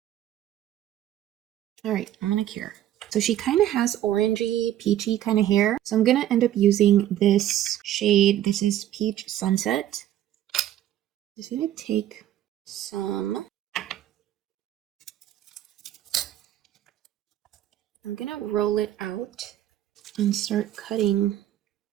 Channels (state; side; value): quieter; left; 12.4 dB